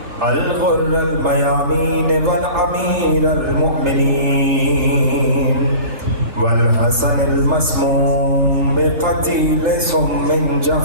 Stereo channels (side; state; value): left; late; 3.4 ms